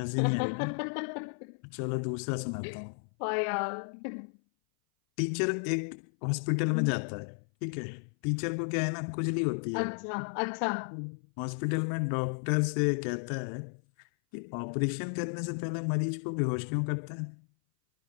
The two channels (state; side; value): silent; right; 56 dB below the other